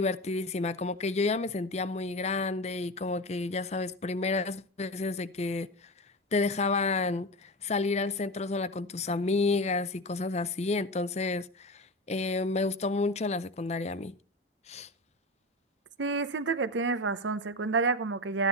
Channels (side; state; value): both; normal; correlation 0.24